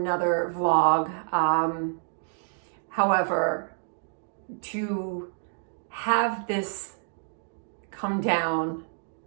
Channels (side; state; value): left; silent; digital silence